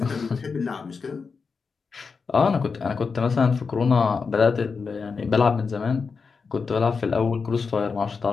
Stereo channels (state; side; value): quieter; right; 5.1 dB